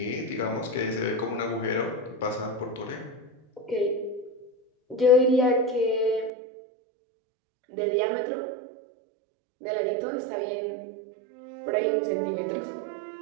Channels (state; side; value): drops out; left; at 6.3 s